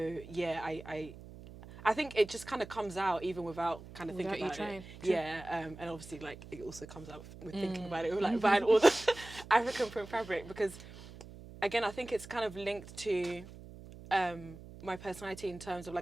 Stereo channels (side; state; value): right; noise; hum, 16 dB below the sound